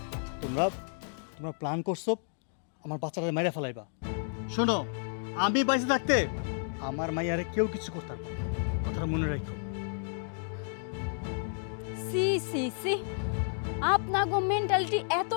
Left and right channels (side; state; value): right; silent; digital silence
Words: তোমরা তোমরা প্ল্যান করছো আমার বাচ্চাটা মাইরা ফেলাইবা। শোনো, আমি বাইসে থাকতে আমার মাইয়ারে কেউ কিছু করতে পারবে না, কথাটা মনে রাখো। সি সি সি, আপনাগো মেন্টালিটি